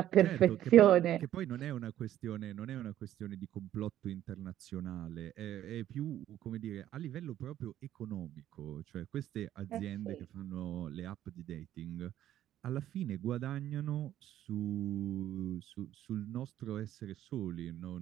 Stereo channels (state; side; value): quieter; left; 12.2 dB